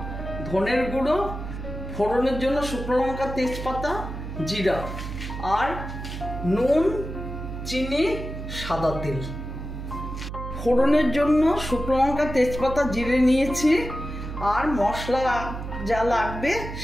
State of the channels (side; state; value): right; noise; hum, 8 dB below the sound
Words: ধনের গুঁড়ো, ফোড়নের জন্য শুকনো লঙ্কা, তেজপাতা, জিরা আর নুন, চিনি, সাদা তেল। ফোড়নের জন্য শুকনো লঙ্কা, তেজপাতা, জিরে নিয়েছি আর মশলা যা লাগবে